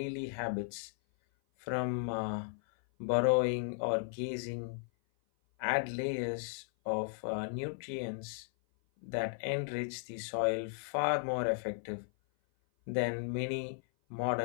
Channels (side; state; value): right; silent; 54 dB below the other